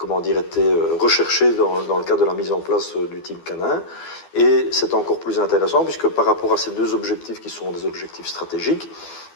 recherchés dans le cadre de la mise en place du team canin. Et c'est encore plus intéressant puisque par rapport à ces deux objectifs qui sont des objectifs stratégiques,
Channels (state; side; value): late; right; 12 ms